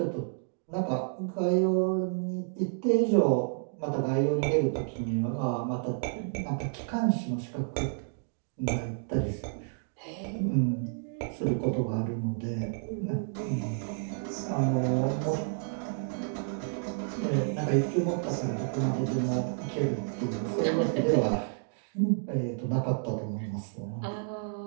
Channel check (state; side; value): silent; left; digital silence